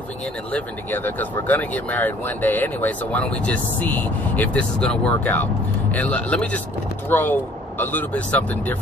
in and living together? Because we're going to get married one day anyway, so why don't we just see if this is going to work out? And let me just throw a little bit something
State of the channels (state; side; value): normal; both; correlation 0.56